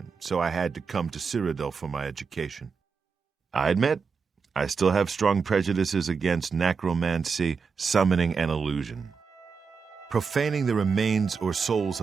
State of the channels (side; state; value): left; quieter; 5.5 dB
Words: so I had to come to Cyrodiil for my education. I admit, I still have strong prejudices against necromancy, summoning, and illusion. Profaning the remains or souls